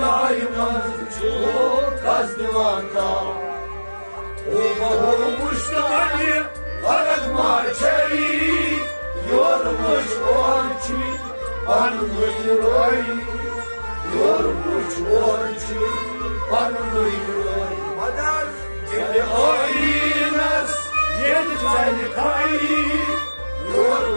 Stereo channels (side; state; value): both; inverted; correlation -1.00